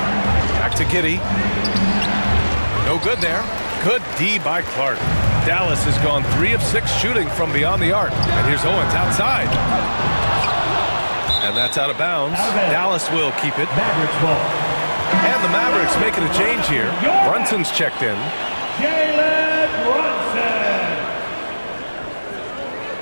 Back to Giddey. No good there. Good D by Clark. Dallas has gone 3 of 6 shooting from beyond the arc. And here's Owens outside. And that's out of bounds. Dallas will keep it. Mavericks ball. And the Mavericks making a change here. Brunson's checked in. Jalen Brunson.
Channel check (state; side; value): inverted; both; correlation -1.00